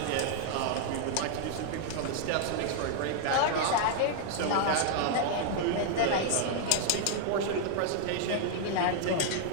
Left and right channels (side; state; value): both; different; correlation -0.01